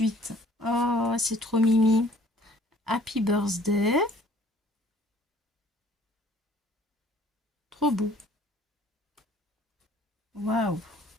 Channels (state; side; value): normal; both; correlation 0.56